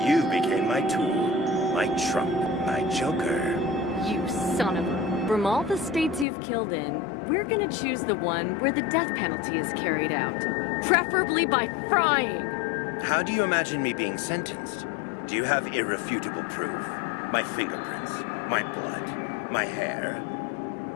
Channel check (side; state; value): right; drops out; at 6.2 s